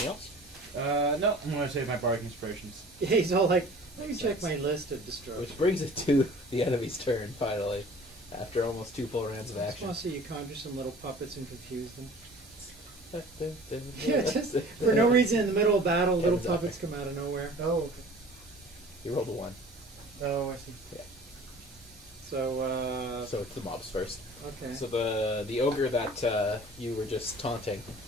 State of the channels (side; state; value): both; normal; correlation 0.46